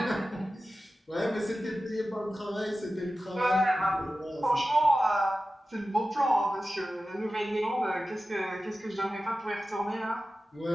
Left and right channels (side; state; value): both; normal; correlation 0.94